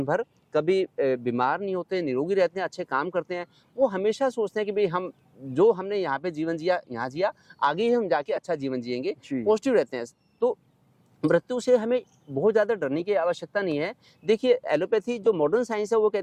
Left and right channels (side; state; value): both; identical; correlation 1.00